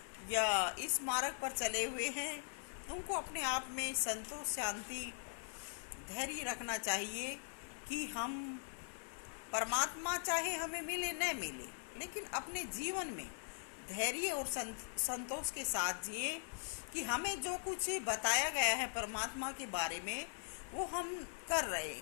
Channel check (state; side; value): silent; right; 50 dB below the other